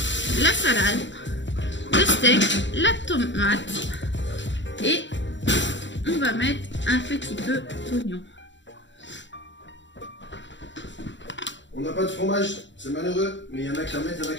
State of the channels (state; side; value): late; right; 0.53 ms